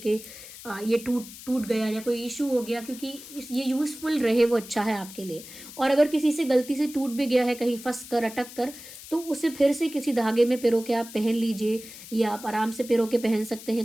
ये टूट गया या कोई इशू हो गया। क्योंकि ये यूज़फुल रहे वो अच्छा है आपके लिए। और अगर किसी से गलती से टूट भी गया है, कहीं फंस कर, अटक कर, तो उसे फिर से किसी धागे में पिरो के आप पहन लीजिए, या आप आराम से पिरो के पहन सकते हैं।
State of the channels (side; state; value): left; noise; hiss, 15 dB below the sound